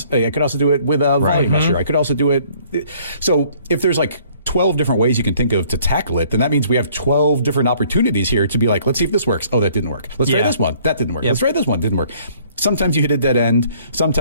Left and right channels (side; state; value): both; inverted; correlation -0.59